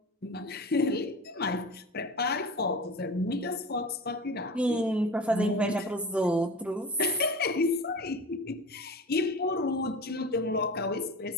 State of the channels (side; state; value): both; normal; correlation 0.33